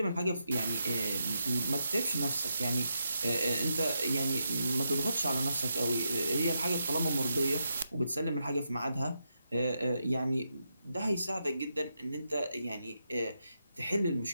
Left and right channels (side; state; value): both; inverted; correlation -0.84